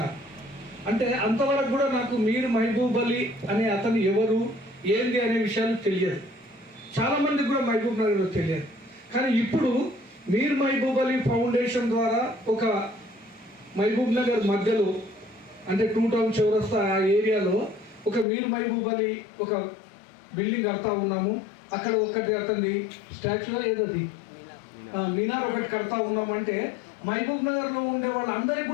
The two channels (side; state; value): right; drops out; at 18.2 s